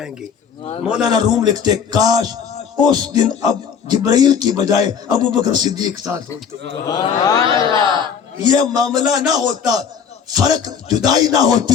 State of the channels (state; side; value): quieter; right; 7.1 dB